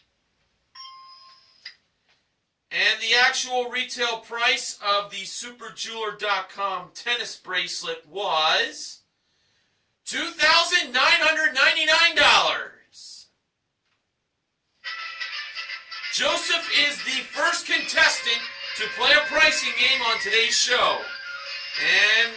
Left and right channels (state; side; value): identical; both; correlation 1.00